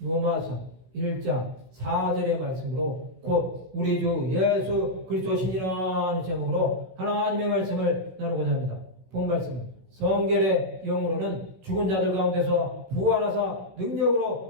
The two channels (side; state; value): left; late; 16 ms